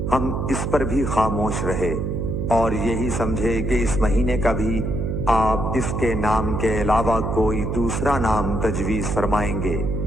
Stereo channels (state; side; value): noise; right; hum, 1 dB below the sound